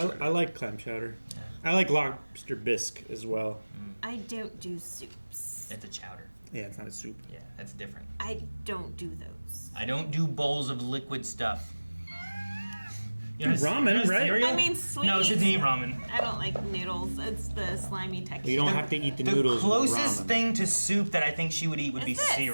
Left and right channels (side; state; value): both; inverted; correlation -1.00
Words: I like clam chowder. I like lobster bisque as well. I don't do soups. It's a chowder. Yeah, it's not a soup. Yeah, that's different. I don't do those. I don't do bowls of liquid stuff. Ramen, right? Cereal? I mean, sweet. No, she doesn't eat ramen. I don't like noodles. It's the slimy texture. You don't have to eat the noodles. The with closest ramen. thing to soup that I think she would eat would be Is this?